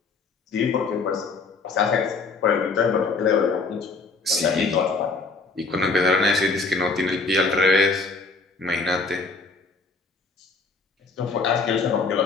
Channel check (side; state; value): right; quieter; 4.1 dB